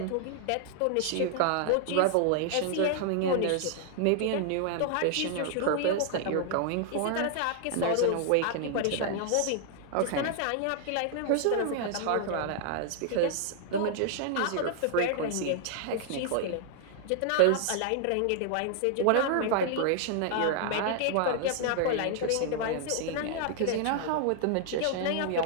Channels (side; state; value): both; different; correlation -0.01